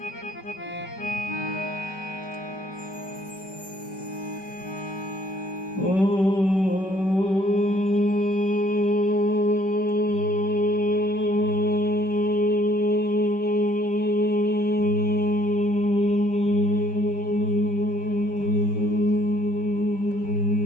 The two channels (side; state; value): right; late; 5.2 ms